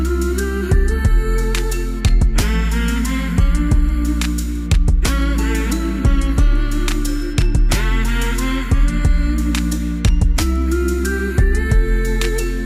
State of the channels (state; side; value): identical; both; correlation 1.00